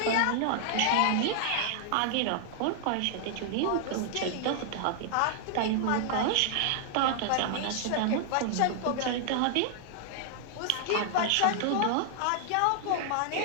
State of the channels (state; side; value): different; both; correlation 0.00